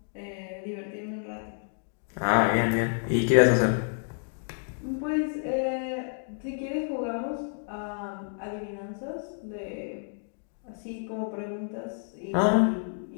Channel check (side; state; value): right; silent; 58 dB below the other